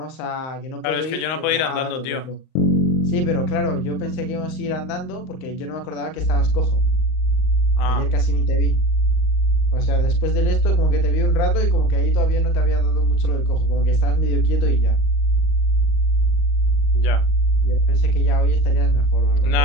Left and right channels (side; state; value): right; late; 38 ms